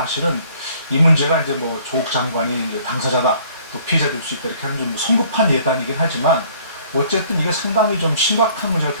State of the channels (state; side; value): inverted; both; correlation -0.58